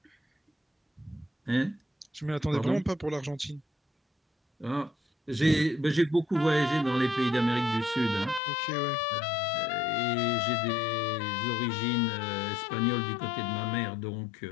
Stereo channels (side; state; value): right; drops out; at 8.4 s